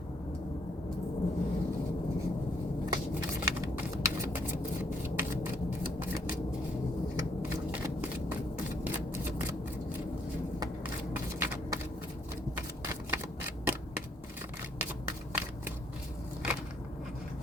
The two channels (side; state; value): both; normal; correlation 0.69